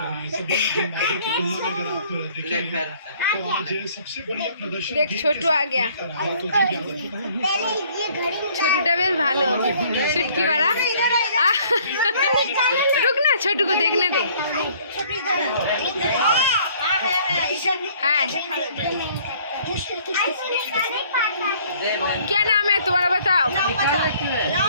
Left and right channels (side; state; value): both; inverted; correlation -0.58